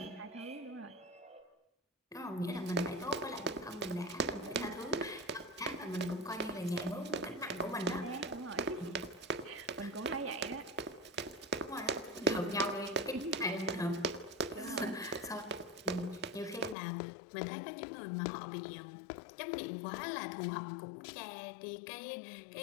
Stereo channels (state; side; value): drops out; right; at 16.8 s